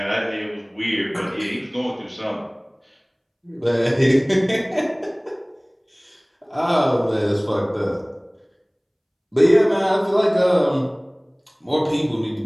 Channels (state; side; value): identical; both; correlation 1.00